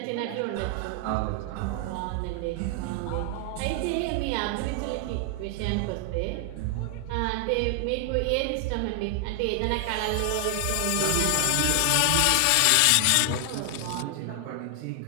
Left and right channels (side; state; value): both; different; correlation 0.00